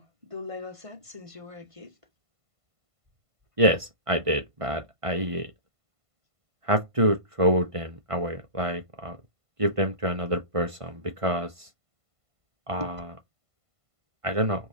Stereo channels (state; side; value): late; left; 1.5 ms